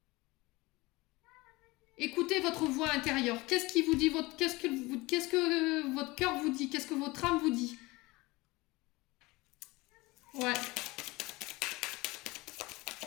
Écoutez votre voix intérieure. Qu'est-ce qui vous dit qu'est-ce que votre cœur vous dit? Qu'est-ce que votre âme vous dit? Ouais.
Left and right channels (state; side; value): quieter; right; 22.1 dB